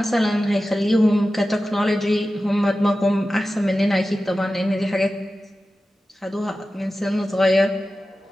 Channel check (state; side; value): normal; both; correlation 0.94